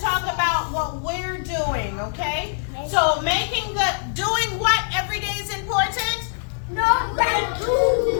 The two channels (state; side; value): silent; right; 63 dB below the other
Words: about what we're doing, okay? So doing what every day is important? Number